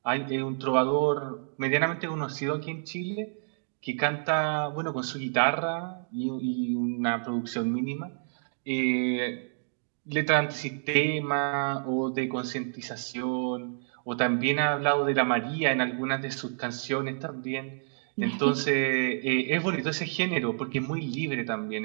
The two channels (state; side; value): silent; left; digital silence